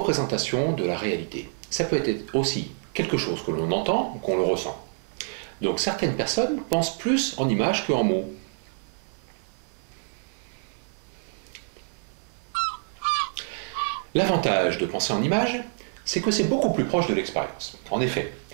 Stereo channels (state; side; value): silent; left; digital silence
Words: de la réalité. Ça peut être aussi quelque chose que l'on entend ou qu'on le ressent. Donc certaines personnes pensent plus en images qu'en mots. L'avantage de penser en images, c'est que c'est beaucoup plus proche de l'expérience. En effet,